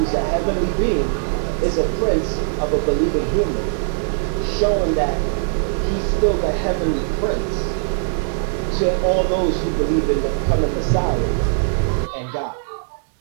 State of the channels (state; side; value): silent; left; digital silence